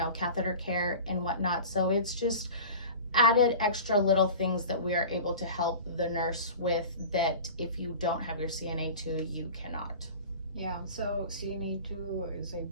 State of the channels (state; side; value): inverted; both; correlation -0.36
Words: catheter care and whatnot. So it's just added extra little things that we are able to help the nurse with that if you don't have your CNA 2, you cannot. Yeah, so CNA 2 is